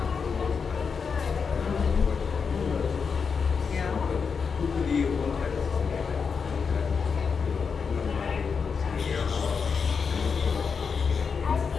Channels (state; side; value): quieter; right; 5.7 dB